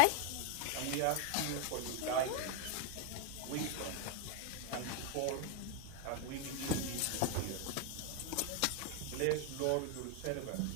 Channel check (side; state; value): both; different; correlation 0.01